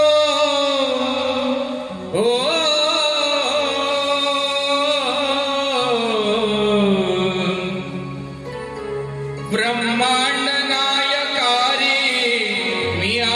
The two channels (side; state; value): both; identical; correlation 1.00